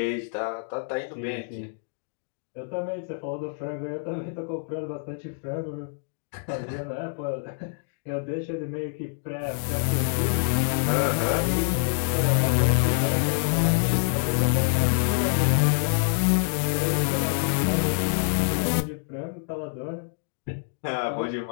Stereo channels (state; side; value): silent; right; digital silence